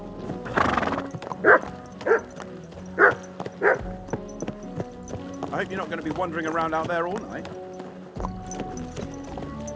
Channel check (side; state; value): both; identical; correlation 1.00